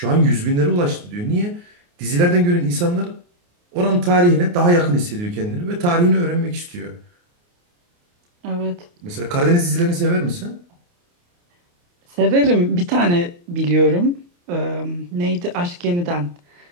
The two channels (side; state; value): left; late; 29 ms